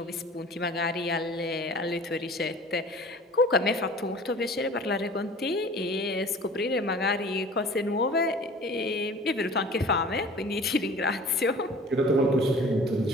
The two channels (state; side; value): normal; both; correlation 0.44